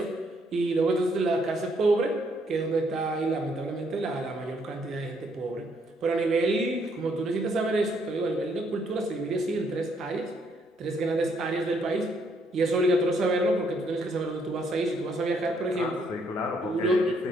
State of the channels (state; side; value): normal; both; correlation 0.71